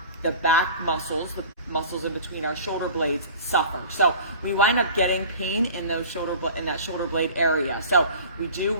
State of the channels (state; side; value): inverted; both; correlation -0.41